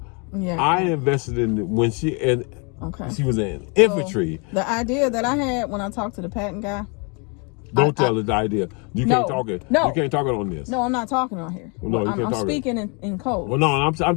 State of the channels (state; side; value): quieter; right; 33.6 dB